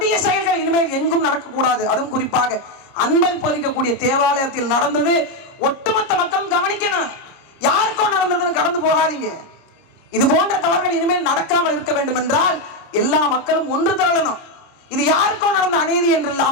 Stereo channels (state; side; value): late; right; 29 ms